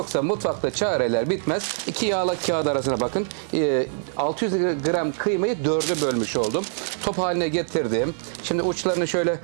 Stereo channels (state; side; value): silent; left; 60 dB below the other